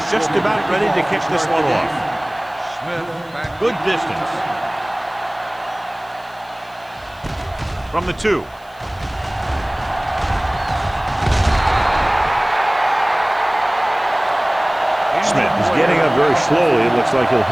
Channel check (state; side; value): noise; left; hiss, 29 dB below the sound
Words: just about ready to kick this one off. Good distance. From the 2. Smith is getting up very slowly. It looks like he'll